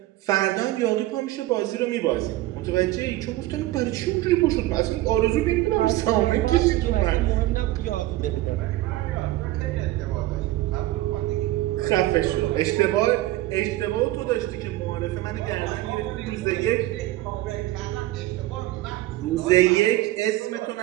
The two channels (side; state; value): left; quieter; 16.5 dB